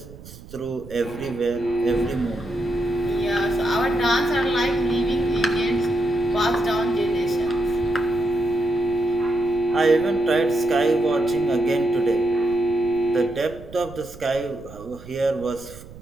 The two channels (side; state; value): right; noise; rumble, 18 dB below the sound